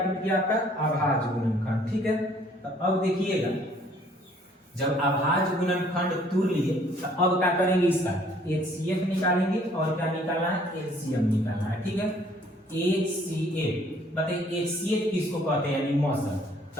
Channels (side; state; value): both; normal; correlation 0.60